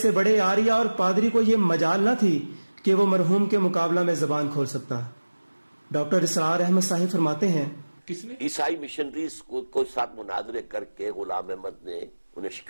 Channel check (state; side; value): inverted; both; correlation -1.00